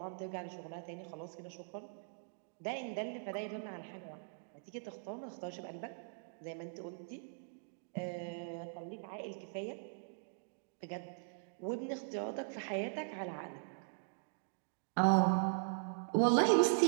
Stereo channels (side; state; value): left; silent; digital silence